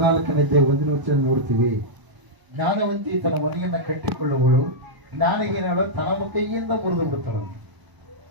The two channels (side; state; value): left; late; 1.0 ms